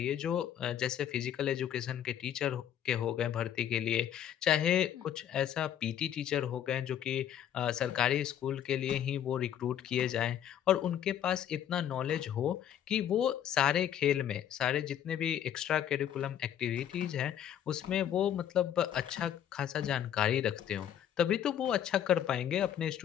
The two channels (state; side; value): quieter; right; 10.2 dB